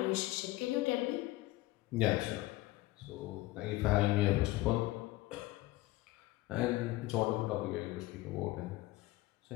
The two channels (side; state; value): right; quieter; 18.4 dB